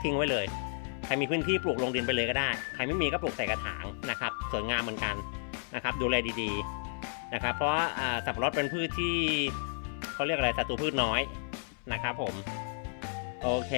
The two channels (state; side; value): silent; right; 56 dB below the other